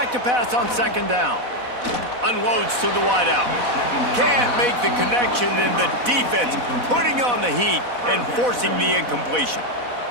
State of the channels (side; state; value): left; late; 4.1 ms